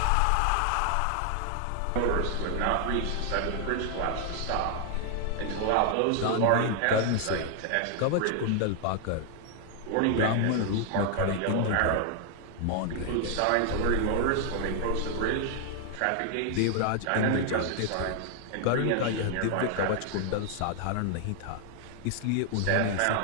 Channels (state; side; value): different; both; correlation 0.00